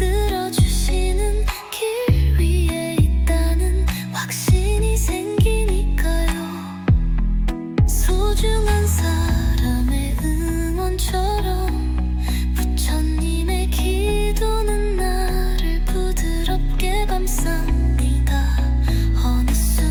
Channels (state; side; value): identical; both; correlation 1.00